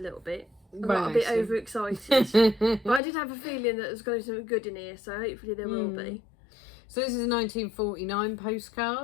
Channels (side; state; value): right; drops out; at 3.0 s